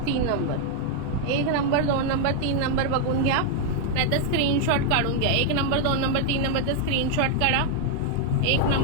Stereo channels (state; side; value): different; both; correlation 0.00